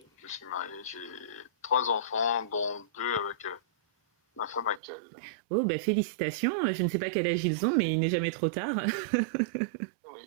Je suis marié, j'ai 3 enfants, dont 2 avec ma femme actuelle. Oh, bah félicitations. Je ne sais pas quel âge ils ont, mais il n'est jamais trop tard. Oui,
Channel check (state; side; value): drops out; left; at 4.8 s